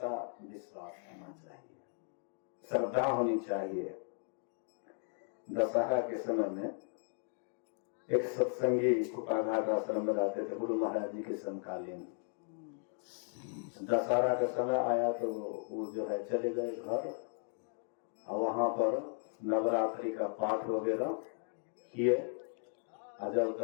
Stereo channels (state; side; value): silent; right; 54 dB below the other